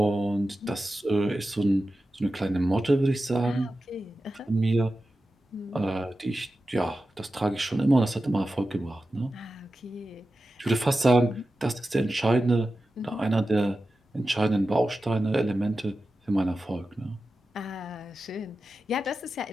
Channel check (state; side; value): normal; both; correlation 0.93